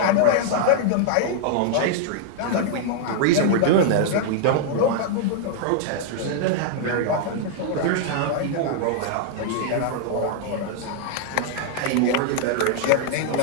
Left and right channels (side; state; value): both; different; correlation -0.01